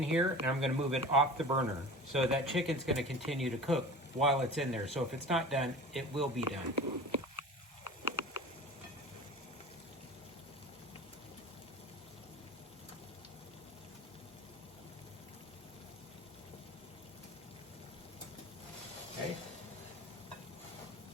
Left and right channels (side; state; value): both; normal; correlation 0.37